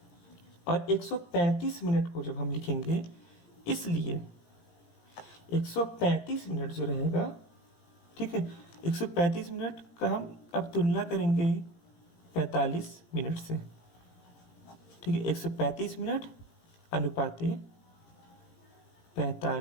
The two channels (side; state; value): right; late; 17 ms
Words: और 135 मिनट को जब हम लिखेंगे, इसलिए 135 मिनट जो रहेगा, ठीक है, 135 मिनट का हम अब तुलना करेंगे 45 मिनट से। ठीक है, 135 मिनट अनुपाते